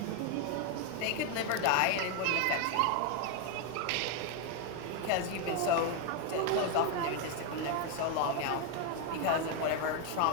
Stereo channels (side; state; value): both; different; correlation 0.01